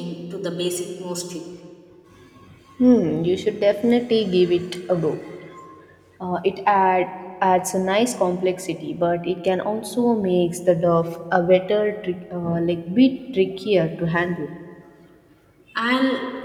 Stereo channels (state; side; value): identical; both; correlation 1.00